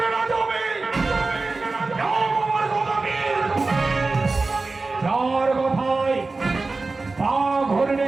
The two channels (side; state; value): left; quieter; 3.6 dB